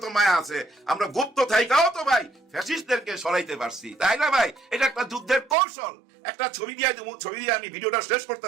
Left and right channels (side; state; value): left; drops out; at 5.6 s